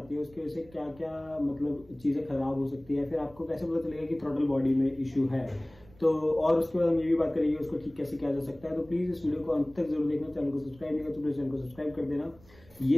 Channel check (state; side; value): noise; right; rumble, 25 dB below the sound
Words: है उसकी वजह से क्या क्या मतलब चीज़ें खराब हो सकती है, फिर आपको कैसे पता चलेगा कि थ्रॉटल बॉडी में इशू है। तो और उसके बाद हम ये भी बात करेंगे उसको ठीक कैसे किया जा सकता है। तो प्लीज इस वीडियो को अंत तक जरूर देखना। चैनल को सब्सक्राइब नहीं किया तो प्लीज चैनल को सब्सक्राइब कर देना।